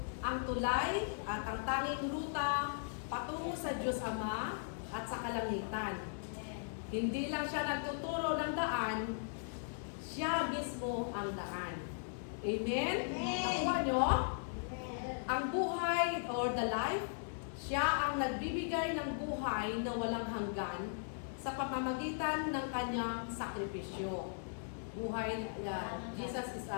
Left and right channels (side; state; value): right; silent; digital silence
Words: ang tulay at ang tanging ruta patungo sa Diyos Ama at sa kalangitan. Hindi lang siya nagtuturo ng daan, siya mismo ang daan. Amen? Nakuha nyo? Ang buhay or the life, siya ang nagbibigay ng buhay na walang hanggan sa pamamagitan ng kanyang sakripisyo. Buhay, Jesus is